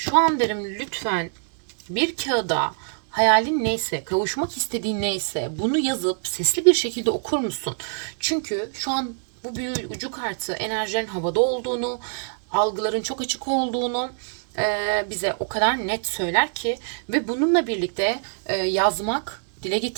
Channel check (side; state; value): left; silent; digital silence